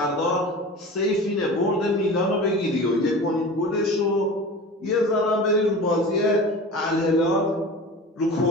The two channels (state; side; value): normal; both; correlation 0.35